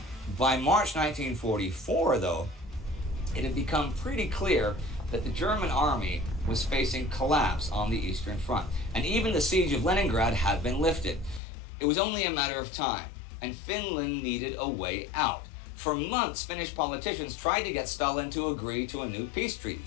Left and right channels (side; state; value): right; drops out; at 11.4 s